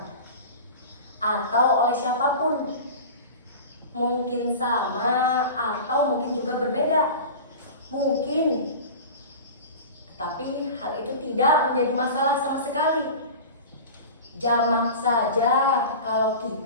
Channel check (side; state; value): both; inverted; correlation -0.33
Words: atau oleh siapapun. Mungkin sama atau mungkin juga berbeda. Mungkin, tapi hal itu tidak menjadi masalah sama sekali. Jamak saja kalau